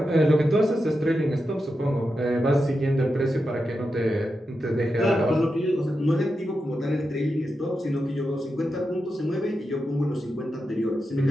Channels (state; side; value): normal; both; correlation 0.88